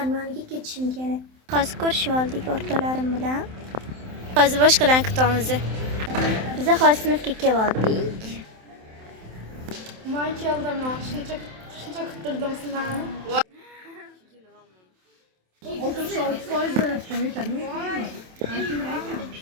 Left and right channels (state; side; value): late; left; 27 ms